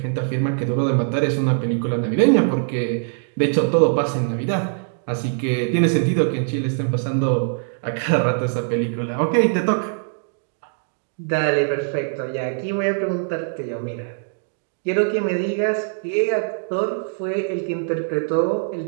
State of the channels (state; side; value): silent; left; digital silence